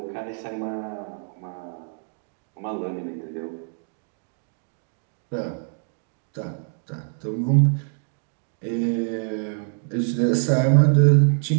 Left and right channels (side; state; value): left; silent; 62 dB below the other